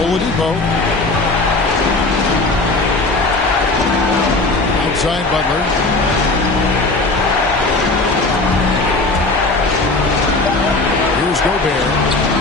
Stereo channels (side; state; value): right; quieter; 3.2 dB